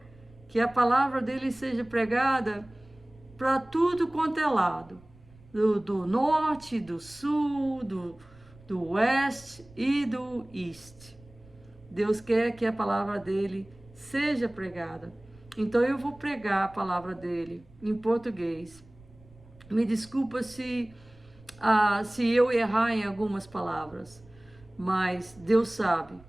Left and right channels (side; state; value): right; noise; rumble, 25 dB below the sound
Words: que a palavra dele seja pregada para tudo quanto é lado, do norte, do sul, do oeste e do este. Deus quer que a palavra dele seja pregada. Então eu vou pregar a palavra dele em português. Me desculpa se eu errar em algumas palavras, mas Deus sabe.